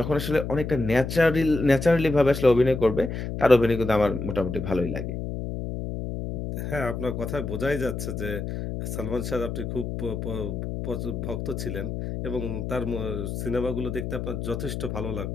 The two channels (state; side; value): noise; left; hum, 5 dB below the sound